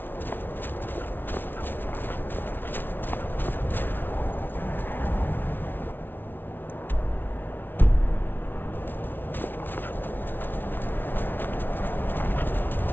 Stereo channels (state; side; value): late; right; 0.097 ms